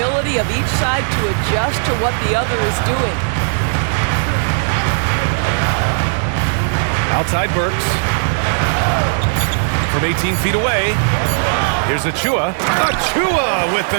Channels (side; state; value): left; silent; 61 dB below the other